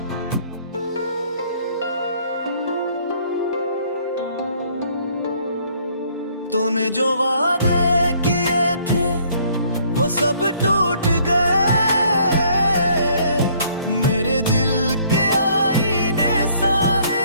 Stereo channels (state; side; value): inverted; both; correlation -0.62